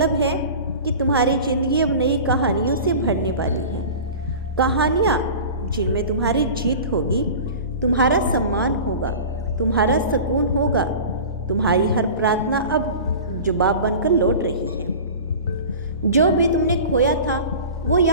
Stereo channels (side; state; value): both; inverted; correlation -0.37